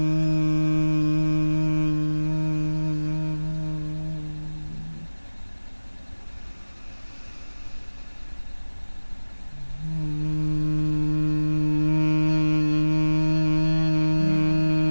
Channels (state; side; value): inverted; both; correlation -1.00